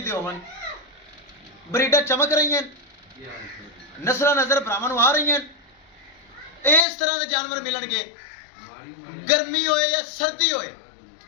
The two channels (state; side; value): drops out; right; at 6.9 s